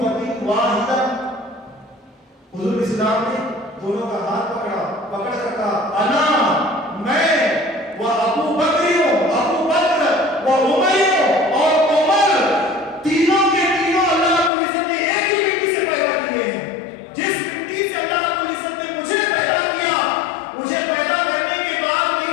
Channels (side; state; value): right; drops out; at 14.5 s